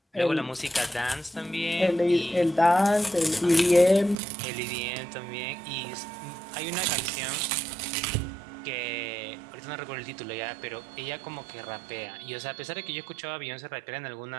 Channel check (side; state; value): left; drops out; at 4.2 s